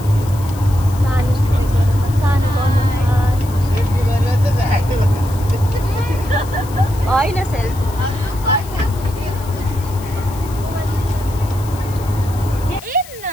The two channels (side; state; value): left; noise; hiss, 18 dB below the sound